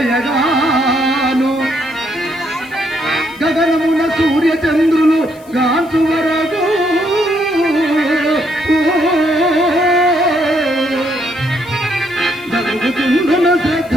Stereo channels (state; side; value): noise; left; hiss, 26 dB below the sound